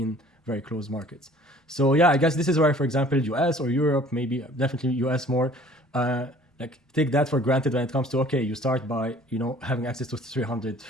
very close markets. So yeah, I guess this is where, for example, US or Europe, maybe definitely US more, like take that for granted when it comes to, okay, you start by having access to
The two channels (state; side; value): normal; both; correlation 0.52